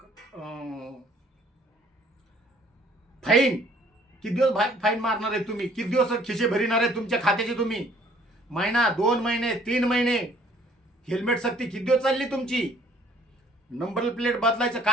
फाईन किती दिवस फाईन मारणार आहे तुम्ही? किती दिवस खिशे भरिणार आहे तुमच्या खात्याचे तुम्ही? महिना, 2 महिने, 3 महिने? हेल्मेट सक्ती किती दिवस चालली तुमची? नंबर प्लेट बदलायचं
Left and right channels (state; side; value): normal; both; correlation 0.59